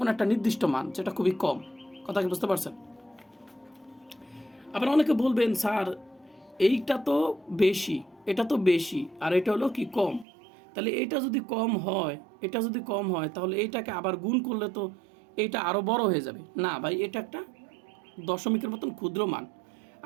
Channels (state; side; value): drops out; left; at 10.2 s